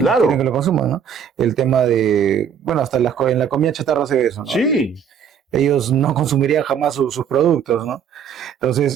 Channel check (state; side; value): quieter; left; 7.7 dB